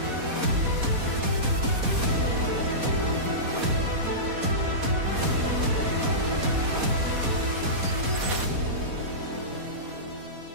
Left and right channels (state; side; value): late; left; 4.2 ms